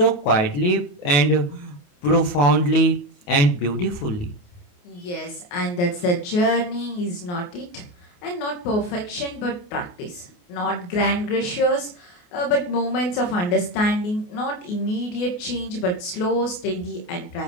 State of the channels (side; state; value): right; late; 28 ms